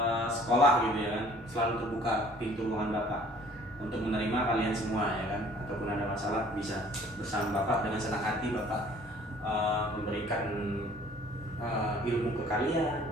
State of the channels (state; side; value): normal; both; correlation 0.54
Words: sekolah gitu ya kan, selalu terbuka pintu ruangan Bapak untuk menerima kalian semua ya kan. Ataupun ada masalah bisa bersama Bapak, dengan senang hati Bapak memberikan ilmu ke